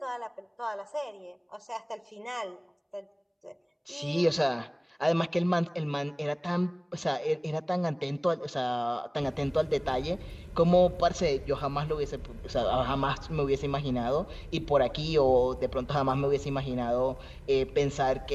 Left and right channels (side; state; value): both; identical; correlation 1.00